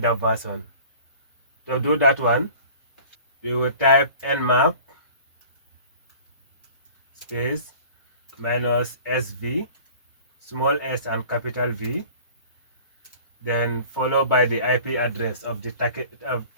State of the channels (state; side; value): inverted; both; correlation -0.45